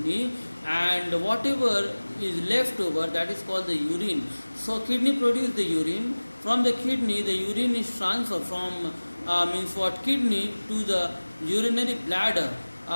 and whatever is left over, that is called the urine. So kidney produces the urine. From the kidney, the urine is transferred from kidney to the urinary bladder,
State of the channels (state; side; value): inverted; both; correlation -1.00